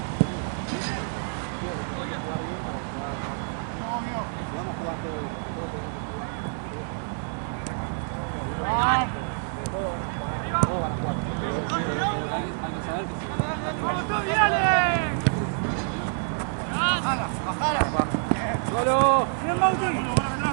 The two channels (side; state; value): left; silent; 60 dB below the other